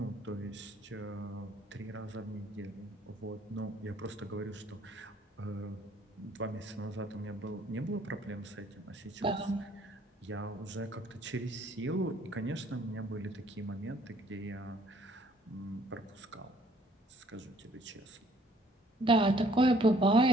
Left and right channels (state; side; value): normal; both; correlation 0.61